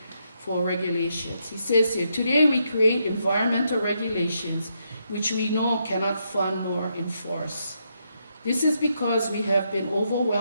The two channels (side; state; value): both; inverted; correlation -0.78